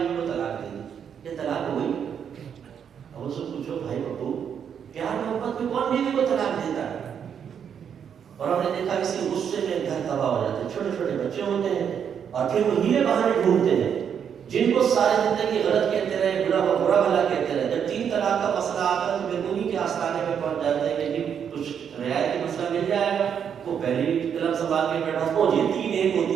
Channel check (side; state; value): left; quieter; 7.9 dB